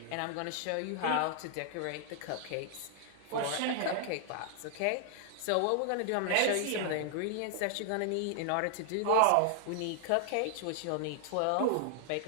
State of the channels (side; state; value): both; different; correlation 0.00